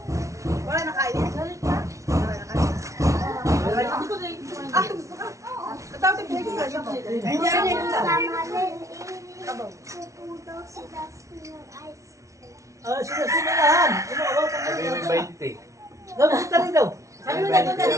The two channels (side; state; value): left; late; 0.15 ms